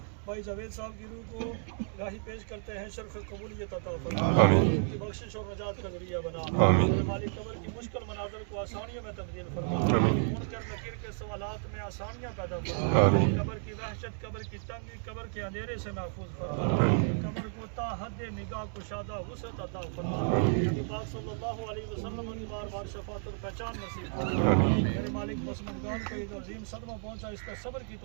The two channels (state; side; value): silent; left; 56 dB below the other